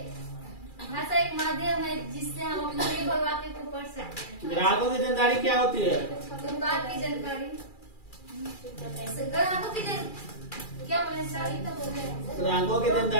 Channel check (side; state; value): right; late; 2.4 ms